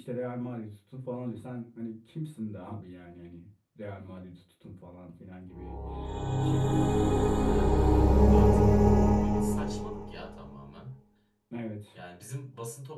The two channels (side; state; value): both; identical; correlation 1.00